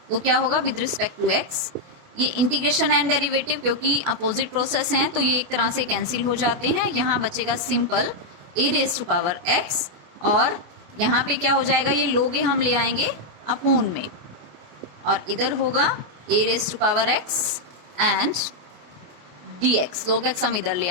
तो क्या होगा विद रिस्पेक्ट टू x, ये इंटीग्रेशन एंड डेरिवेटिव क्योंकि अपोजिट प्रोसेस हैं तो ये एक तरह से कैंसिल हो जाते हैं। यहाँ बचेगा simple a raise to power x, और यहाँ पे क्या हो जाएगा ये log a हम ले आएंगे अपॉन में, और इधर होगा a raise to power x and dx। log x हम इधर ले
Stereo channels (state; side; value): late; left; 28 ms